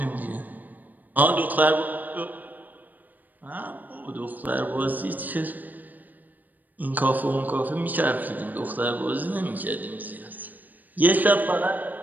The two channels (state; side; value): late; left; 0.085 ms